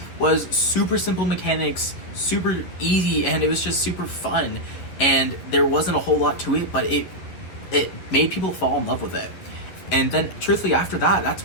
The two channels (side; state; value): right; late; 11 ms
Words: was super simple mechanics, super easy, and it was just super fun. And there wasn't a whole lot to it, but it made people fall in love with it. And then, truthfully, after that,